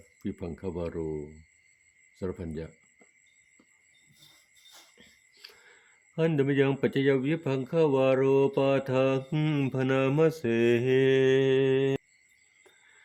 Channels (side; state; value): both; identical; correlation 1.00